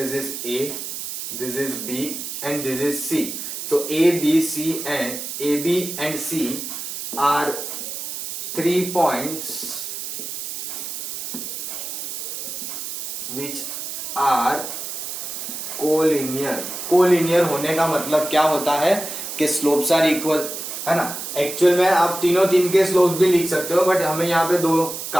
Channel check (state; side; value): noise; right; hiss, 6 dB below the sound